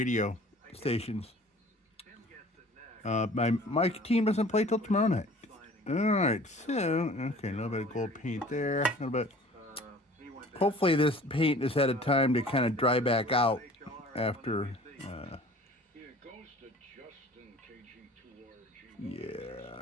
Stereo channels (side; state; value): both; normal; correlation 0.48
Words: stations. My team doesn't play till tomorrow night. All right, so, okay, a little bit of gold paint there. A little bit. Hopefully this paint has had a time to kind of dry back out after.